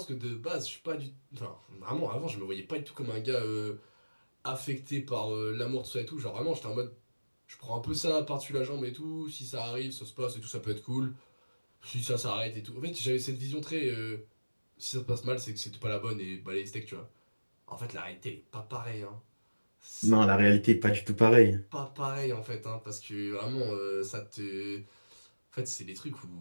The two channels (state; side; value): inverted; both; correlation -1.00